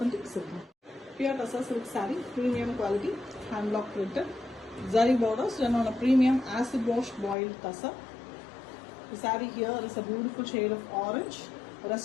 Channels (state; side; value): drops out; right; at 7.4 s